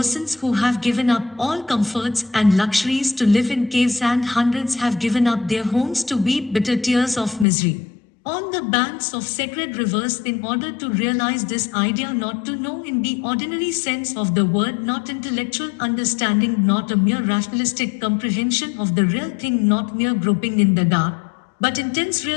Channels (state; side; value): drops out; right; at 7.5 s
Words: who have given up all comforts and luxuries to live in caves, and hundreds have given up their homes to weep bitter tears of misery on the banks of sacred rivers in order to realize this idea, not to know in the ordinary sense of the word, not intellectual understanding, not a mere rationalistic comprehension of the real thing, not mere groping in the dark, but intense